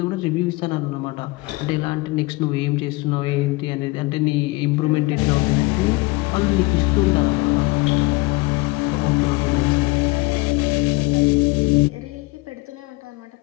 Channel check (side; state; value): right; quieter; 23.4 dB